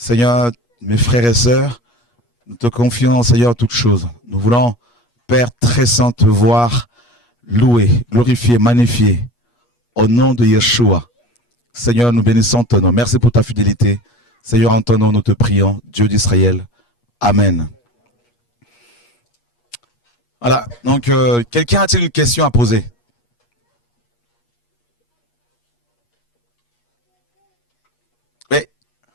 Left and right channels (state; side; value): late; right; 8.4 ms